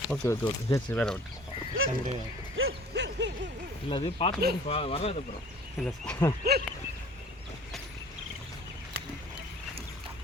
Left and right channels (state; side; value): normal; both; correlation 0.48